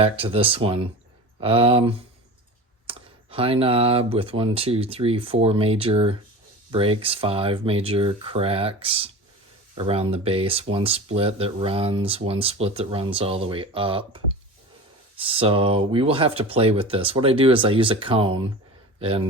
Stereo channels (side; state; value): both; normal; correlation 0.33